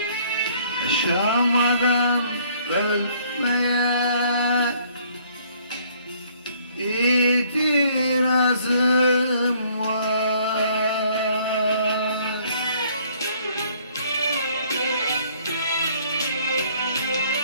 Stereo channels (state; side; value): inverted; both; correlation -0.61